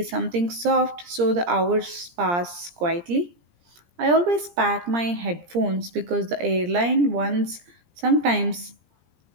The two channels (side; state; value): left; late; 17 ms